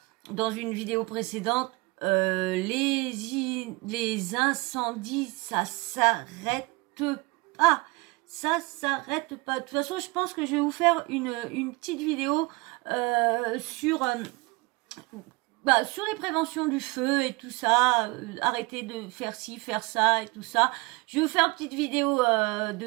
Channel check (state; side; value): quieter; left; 24.8 dB